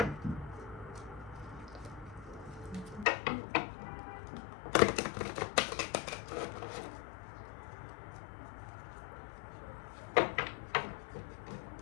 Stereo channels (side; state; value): right; drops out; at 3.1 s